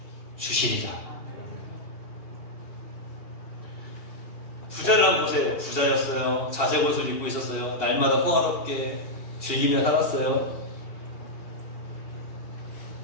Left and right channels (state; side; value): late; right; 2.8 ms